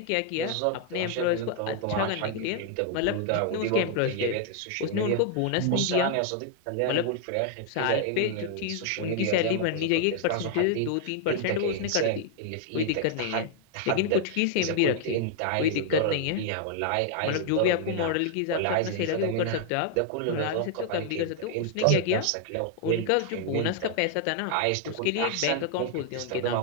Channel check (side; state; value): both; different; correlation 0.00